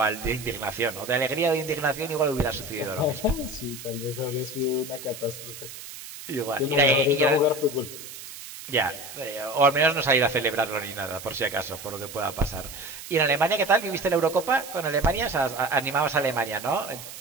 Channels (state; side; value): noise; right; hiss, 13 dB below the sound